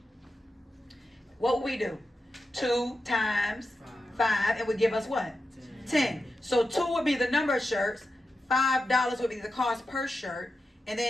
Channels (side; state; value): both; normal; correlation 0.90